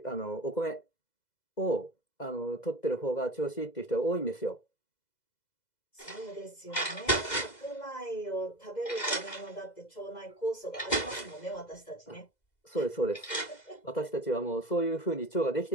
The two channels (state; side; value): late; right; 2.0 ms